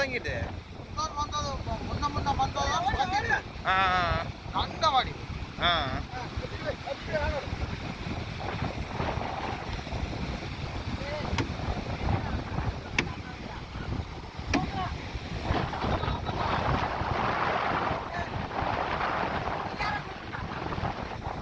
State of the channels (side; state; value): both; identical; correlation 1.00